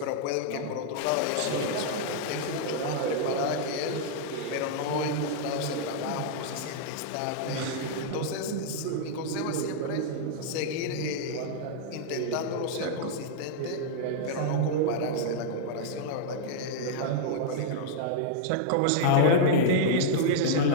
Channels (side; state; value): both; different; correlation -0.01